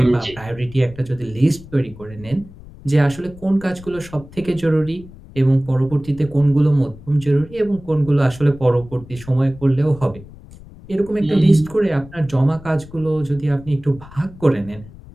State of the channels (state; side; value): noise; left; rumble, 19 dB below the sound